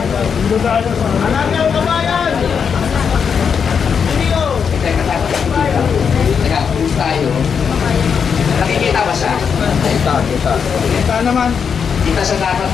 ng kabayan! Video! Teka, teka, pulis tayo. Nakikita ba siya? Kita naman. Kita siya dapat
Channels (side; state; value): right; quieter; 6.6 dB